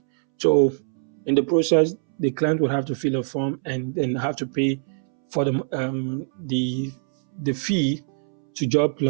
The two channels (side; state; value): left; silent; 63 dB below the other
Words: So in the process, the client would have to fill a form and then have to pay for the fee to